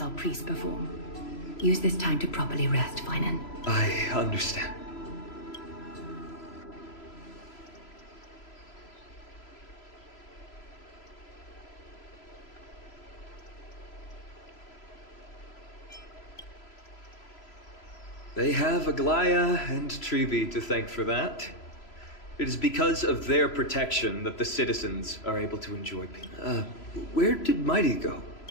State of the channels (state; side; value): late; right; 3.0 ms